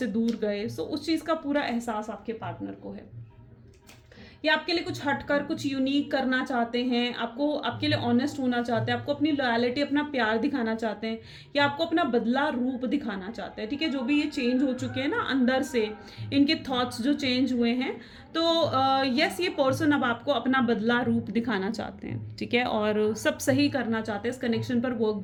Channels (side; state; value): both; identical; correlation 1.00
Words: दूर गए. सो उस चीज़ का पूरा एहसास आपके पार्टनर को है. ये आपके लिए कुछ हटकर कुछ यूनिक करना चाहते हैं, आपको आपके लिए ऑनेस्ट होना चाहते हैं, आपको अपनी लॉयल्टी, अपना प्यार दिखाना चाहते हैं, या आपको अपना बदला रूप दिखाना चाहते हैं, ठीक है. जो भी ये चेंज हो चुके हैं ना अंदर से, इनके थॉट्स जो चेंज हुए हैं, तो यस, ये पर्सन अब आपको अपना बदला रूप दिखाना चाहते हैं, ठीक है, और सब सही करना चाहते हैं, इस कनेक्शन पर वर्क